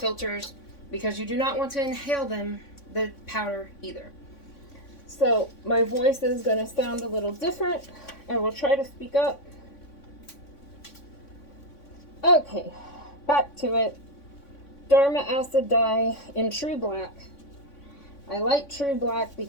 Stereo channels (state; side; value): late; right; 3.6 ms